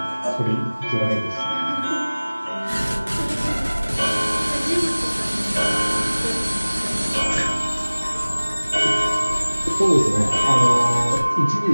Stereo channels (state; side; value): inverted; both; correlation -1.00